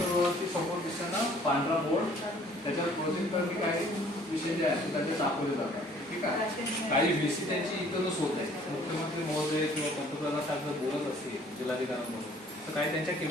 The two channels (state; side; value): normal; both; correlation 0.56